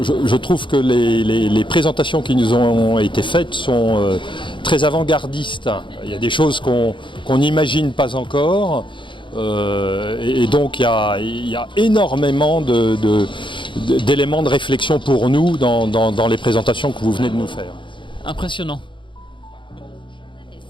Je trouve que les présentations qui nous ont été faites sont très avant-gardistes. Il y a des choses qu'on n'imagine pas encore. Et donc il y a énormément d'éléments de réflexion pour nous dans les présentations que vous venez de nous faire. Impressionnant.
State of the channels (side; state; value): right; late; 0.24 ms